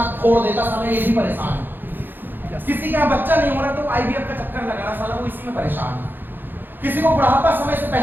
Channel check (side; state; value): left; late; 0.094 ms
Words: फोड़ देता, साला ये भी परेशान है। किसी के यहाँ बच्चा नहीं हो रहा तो IVF का चक्कर लगा रहा, साला वो इसी में परेशान है। किसी को बुढ़ापा समय से